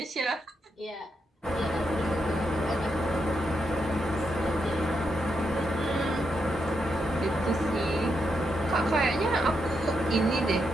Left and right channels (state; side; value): normal; both; correlation 0.82